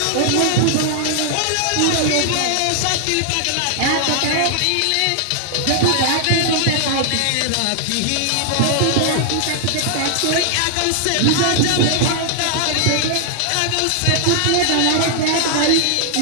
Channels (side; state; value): both; different; correlation 0.00